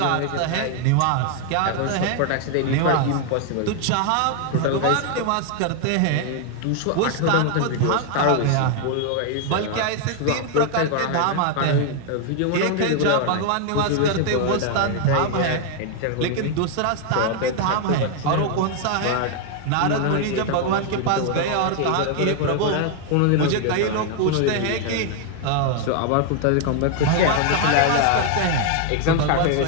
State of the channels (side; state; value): both; different; correlation 0.00